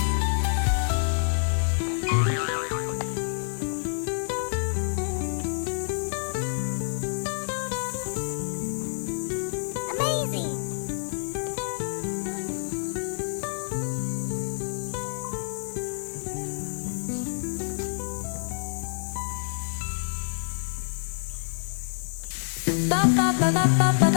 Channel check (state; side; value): silent; right; digital silence